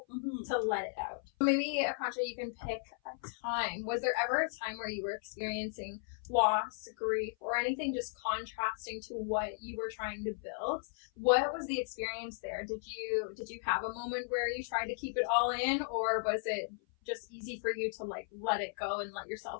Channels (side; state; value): right; silent; 54 dB below the other